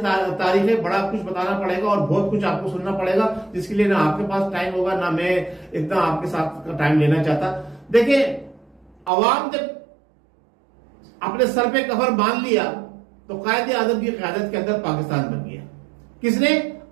है, बड़ा कुछ बताना पड़ेगा और बहुत कुछ आपको सुनना पड़ेगा, जिसके लिए ना आपके पास टाइम होगा ना मैं इतना आपके साथ टाइम लेना चाहता। देखिए, अवाम जब अपने सर पे कफर बांध लिया तो कायदे आजम की क़यादत के अंदर पाकिस्तान बन गया। किसने?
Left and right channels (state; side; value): drops out; left; at 9.1 s